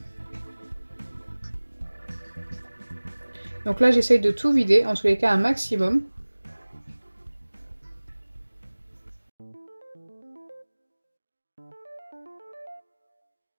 Donc là, j'essaye de tout vider, en tous les cas un maximum.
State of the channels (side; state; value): both; inverted; correlation -1.00